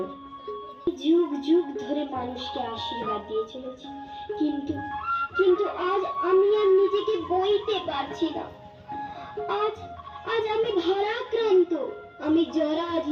যুগ যুগ ধরে মানুষকে আশীর্বাদ দিয়ে চলেছে, কিন্তু কিন্তু আজ আমি আর নিজেকে বইতে পারছি না। আজ আজ আমি ভারাক্রান্ত, আমি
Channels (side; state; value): both; identical; correlation 1.00